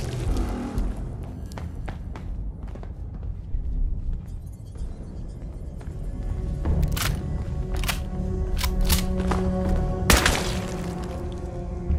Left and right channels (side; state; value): both; identical; correlation 1.00